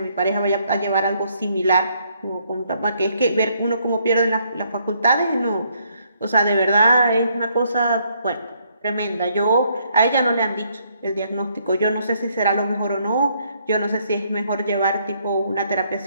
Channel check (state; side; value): inverted; both; correlation -0.70